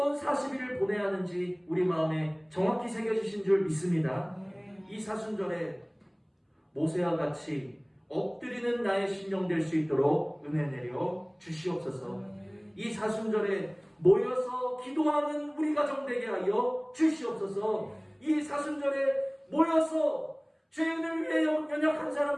40일을 보내야 하는지 우리 마음에 정확히 새겨주신 줄 믿습니다. 이 사순절에 모세와 같이 엎드리는 나의 심령 될 수 있도록 은혜 내려 주시옵소서. 이 사순절에 모여서 기도하는 우리 가정 되게 하여 주시옵소서. 이 사순절에 모여서 죄인을 위해, 연약한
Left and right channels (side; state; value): both; identical; correlation 1.00